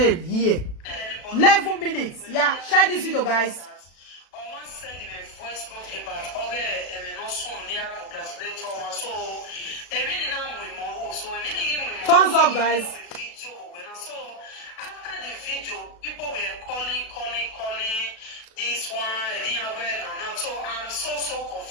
here. 11 minutes. Yeah, share this video, guys. Thumbs up, guys. After the video, people were calling this one, I didn't aware now. So I'm so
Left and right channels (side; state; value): right; late; 36 ms